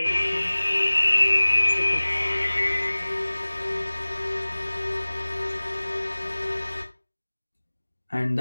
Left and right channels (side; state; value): both; inverted; correlation -1.00